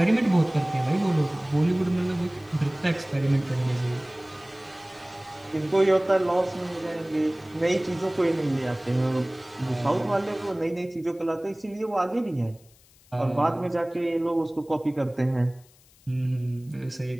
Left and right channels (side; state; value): left; noise; hiss, 28 dB below the sound